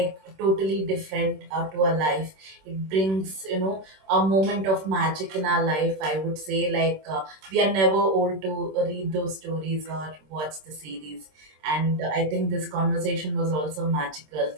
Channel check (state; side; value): late; left; 26 ms